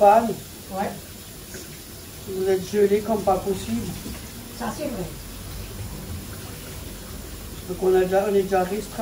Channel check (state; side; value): identical; both; correlation 1.00